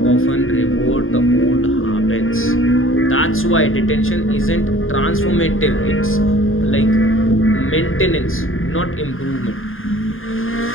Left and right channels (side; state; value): right; late; 0.59 ms